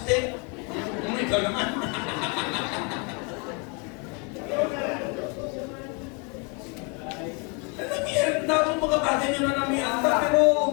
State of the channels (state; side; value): quieter; right; 33.7 dB